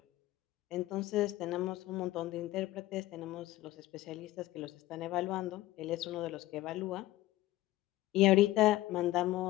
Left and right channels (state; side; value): quieter; right; 16.6 dB